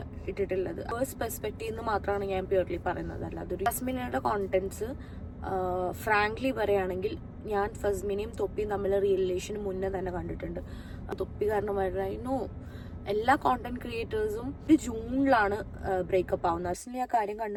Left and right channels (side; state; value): both; identical; correlation 1.00